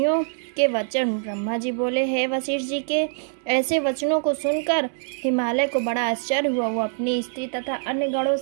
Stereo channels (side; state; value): left; silent; 63 dB below the other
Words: के वचन। ब्रह्मा जी बोले, हे वशिष्ठ जी के ऐसे वचनों को सुनकर हिमालय को बड़ा आश्चर्य हुआ। वो अपनी स्त्री तथा अन्य गणों